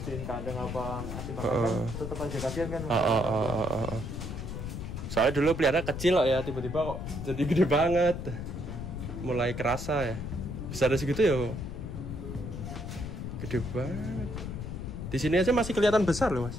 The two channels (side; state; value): left; noise; rumble, 6 dB below the sound